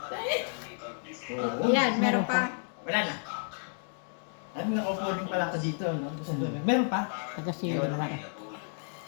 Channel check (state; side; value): silent; right; 57 dB below the other